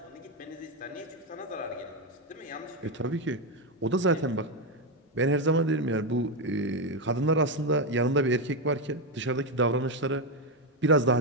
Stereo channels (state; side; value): normal; both; correlation 0.07